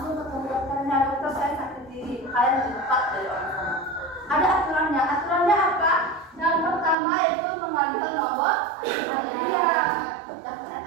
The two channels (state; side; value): drops out; left; at 7.0 s